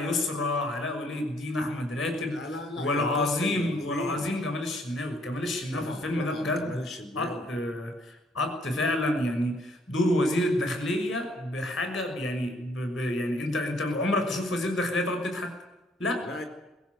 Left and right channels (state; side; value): normal; both; correlation 0.66